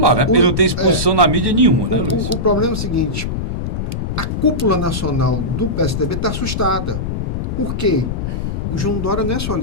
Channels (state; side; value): noise; left; rumble, 2 dB below the sound